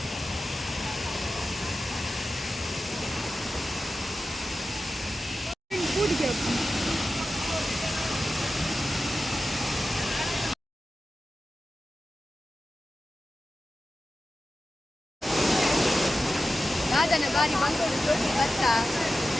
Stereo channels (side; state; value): both; normal; correlation 0.93